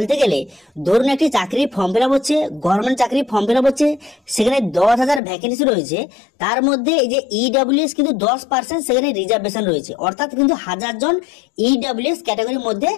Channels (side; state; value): right; drops out; at 5.2 s